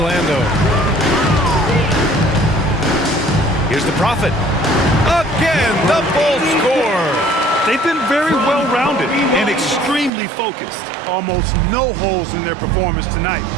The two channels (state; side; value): drops out; left; at 10.1 s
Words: Here's the Prophet. Again, the Bulls score. They've been very well-rounded and extremely focused. Almost no holes in their performance tonight.